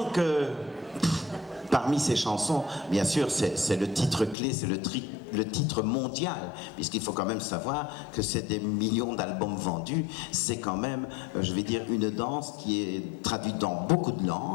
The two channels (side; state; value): right; drops out; at 4.4 s